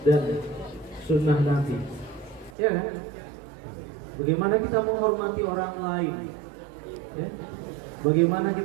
dan Sunnah Nabi. Ya, bagaimana kita menghormati orang lain? Ya? Bagaimana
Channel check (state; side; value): drops out; left; at 2.6 s